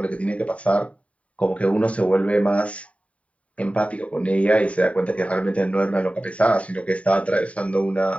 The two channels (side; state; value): right; late; 0.065 ms